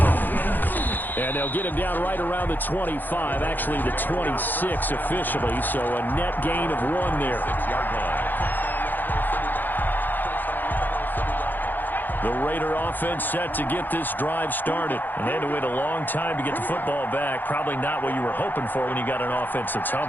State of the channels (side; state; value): right; late; 0.088 ms